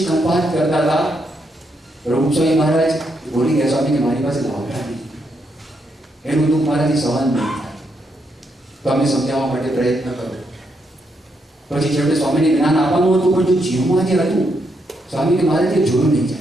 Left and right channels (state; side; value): normal; both; correlation 0.79